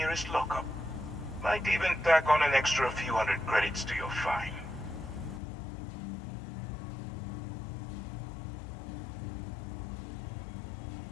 lockup. Might even tack on an extra few hundred credits to your fine.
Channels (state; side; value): drops out; right; at 5.4 s